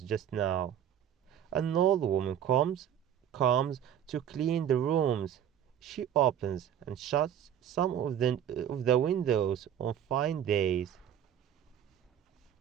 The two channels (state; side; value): quieter; left; 9.7 dB